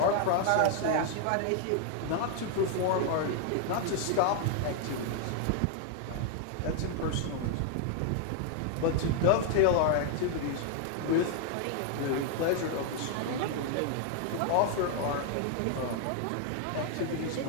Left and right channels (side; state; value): both; different; correlation 0.00